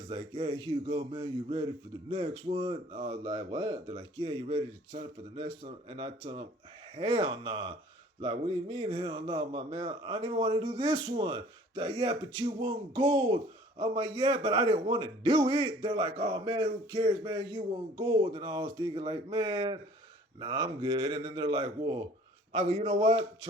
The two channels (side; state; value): both; normal; correlation 0.52